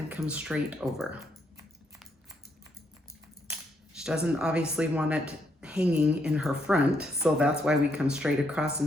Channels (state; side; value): normal; both; correlation 0.76